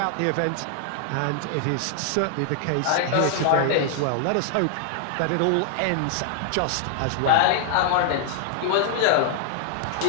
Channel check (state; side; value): different; both; correlation 0.00